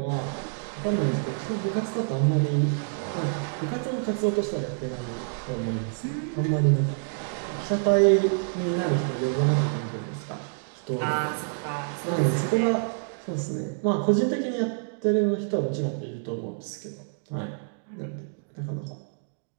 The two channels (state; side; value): silent; left; digital silence